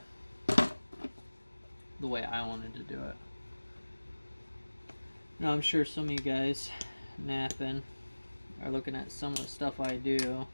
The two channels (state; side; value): inverted; both; correlation -1.00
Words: the way I wanted to do it. Now I'm sure some of you guys napping are looking at some of the stuff I do